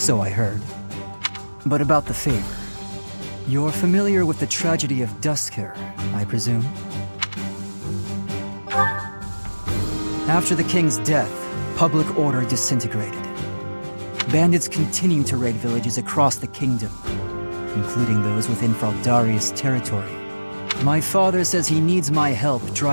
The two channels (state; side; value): inverted; both; correlation -1.00